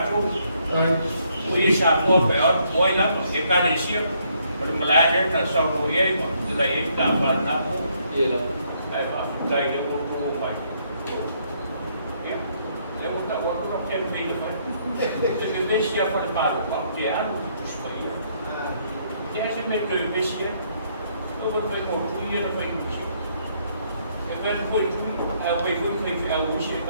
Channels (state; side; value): inverted; both; correlation -0.70